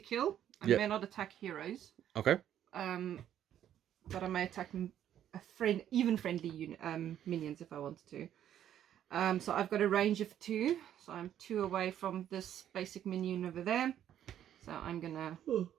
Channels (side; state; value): left; quieter; 10.7 dB